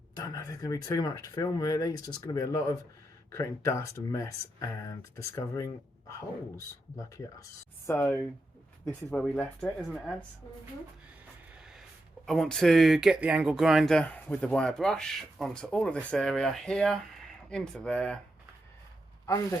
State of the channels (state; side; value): normal; both; correlation 0.86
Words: Don't know if there's going to be too much to film, really. It's just going to be a lot of creating dust and mess and discovering holes. Lucky us. So this is where we left it, isn't it, Ads? Mm-hmm. I want to get the angle grinder with the wire brush onto all of this area here, into there, under